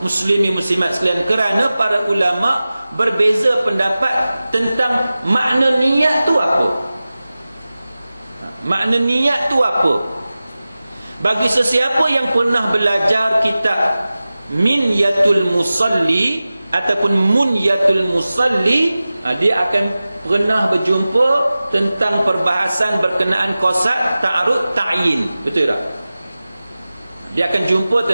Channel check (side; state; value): both; inverted; correlation -0.96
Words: Muslimin muslimat sekalian, kerana para ulama berbeza pendapat tentang makna niat tu apa. Makna niat tu apa? Bagi sesiapa yang pernah belajar kitab Minyatul Musalli ataupun Munyatul Musalli, dia akan pernah berjumpa tentang perbahasan berkenaan qasad, ta'arud, ta'yin. Betul tak? Dia akan jumpa